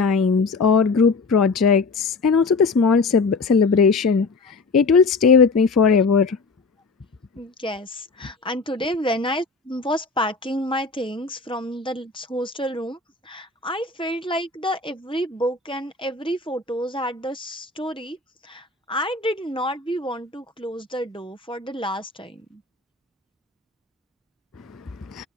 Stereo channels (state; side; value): quieter; right; 4.2 dB